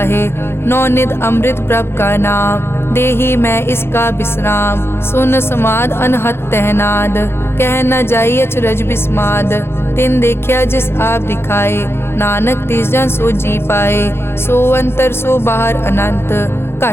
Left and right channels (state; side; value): late; right; 0.12 ms